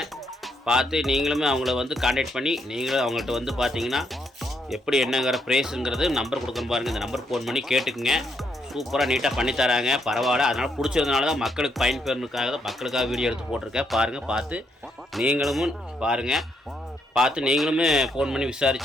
பார்த்து நீங்களுமே அவங்கள வந்து கான்டாக்ட் பண்ணி நீங்களும் அவங்கள்ட்ட வந்து பார்த்தீங்கன்னா எப்படி என்னங்கிற ப்ரைஸுங்கிறது நம்பர் கொடுக்கணும் பாருங்கள். இந்த நம்பர் ஃபோன் பண்ணி கேட்டுக்குங்க. சூப்பராக நீட்டாக பண்ணி தராங்க. பரவாயில்ல. அதனால் பிடிச்சதுனால தான் மக்களுக்கு பயன்பெறனுக்காக தான் மக்களுக்காக வீடியோ எடுத்து போட்டிருக்கேன். பாருங்கள், பார்த்து நீங்களும் பாருங்கள். பார்த்து நீங்களுமே ஃபோன் பண்ணி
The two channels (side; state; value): both; normal; correlation 0.76